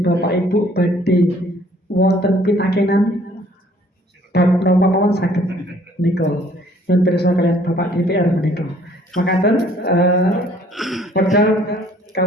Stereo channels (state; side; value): normal; both; correlation 0.59